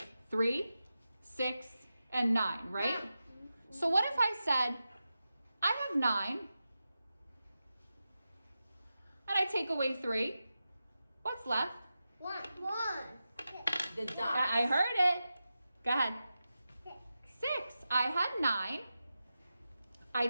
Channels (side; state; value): both; inverted; correlation -0.92